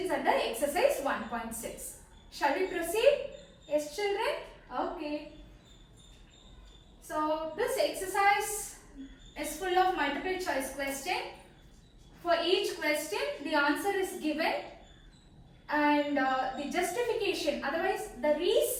under exercise 1.6. Shall we proceed? Yes children? Okay, so this exercise is full of multiple choice question. For each question the answer is given and the justification, otherwise the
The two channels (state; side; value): identical; both; correlation 1.00